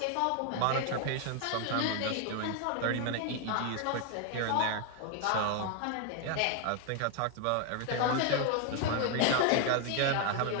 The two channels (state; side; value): different; both; correlation 0.01